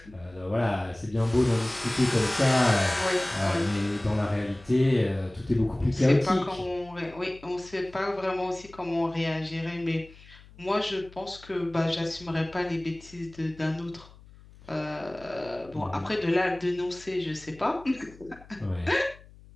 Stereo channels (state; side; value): noise; left; hum, 22 dB below the sound